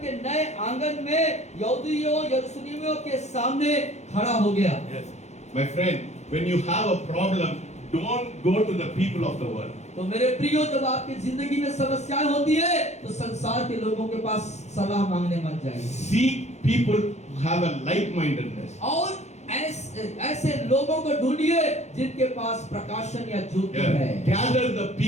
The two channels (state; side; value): late; right; 0.33 ms